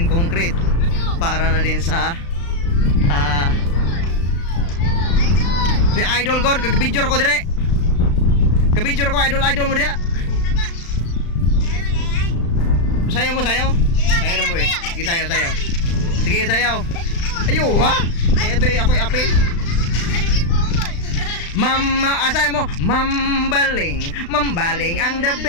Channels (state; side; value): late; right; 35 ms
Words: concrete. Para na din sa si Idol God, kag-video ko dire. Kag-video ko idol mo dia. Sayaw mo, sayaw. Sayaw mo eh. Sige, sayaw. Sige, sayaw. Ayo, ha? Ito yung ako'y apel. Sayaw mo. Mambaling ang the